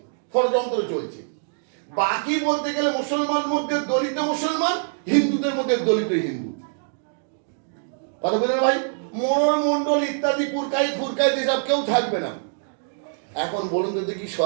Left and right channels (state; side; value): silent; left; digital silence